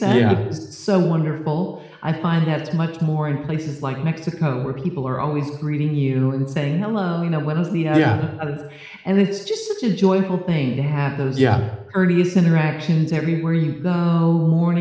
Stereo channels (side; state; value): both; identical; correlation 1.00